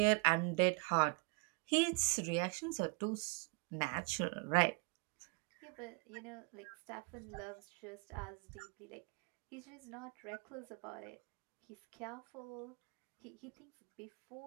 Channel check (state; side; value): quieter; left; 32.8 dB